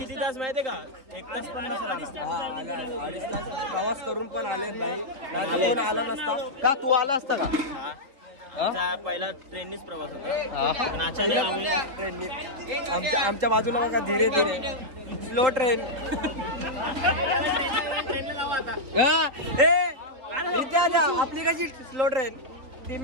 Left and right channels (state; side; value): late; left; 3.9 ms